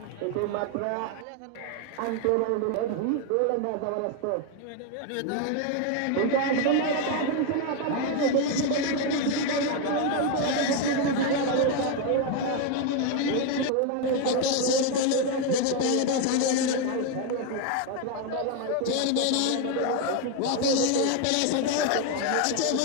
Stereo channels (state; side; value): different; both; correlation 0.01